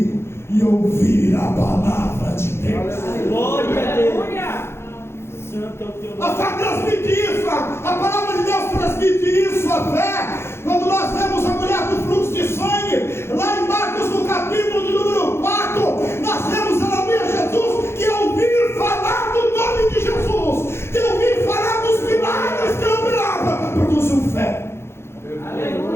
e ouvir a palavra de Deus. Glória a Deus. Aleluia. Santo é o teu A nome. fé transmite isso, a palavra de Deus transmite isso, a fé. Quando nós vemos a mulher do fluxo de sangue, lá em Marcos no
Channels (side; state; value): right; late; 0.12 ms